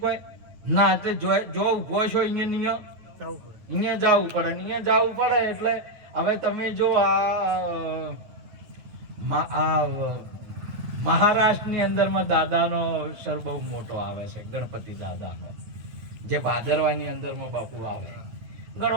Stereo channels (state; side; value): late; left; 9.4 ms